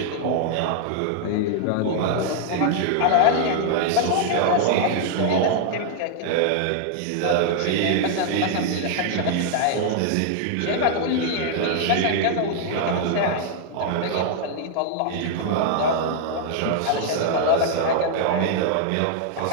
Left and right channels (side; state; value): both; different; correlation -0.01